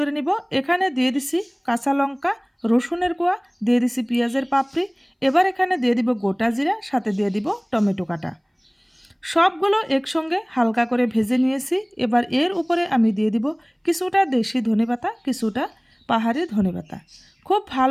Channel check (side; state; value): both; identical; correlation 1.00